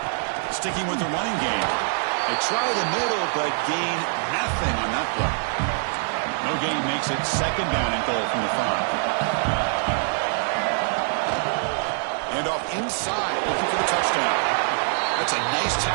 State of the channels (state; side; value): silent; left; 59 dB below the other